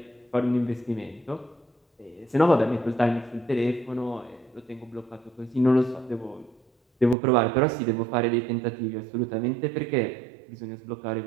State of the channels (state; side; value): drops out; left; at 7.2 s